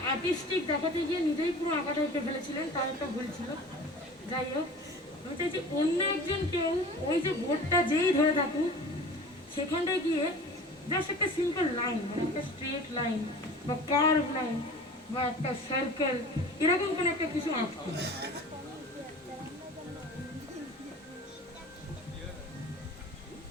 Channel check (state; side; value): normal; both; correlation 0.40